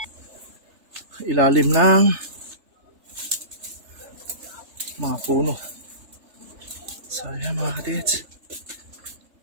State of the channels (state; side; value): late; left; 3.3 ms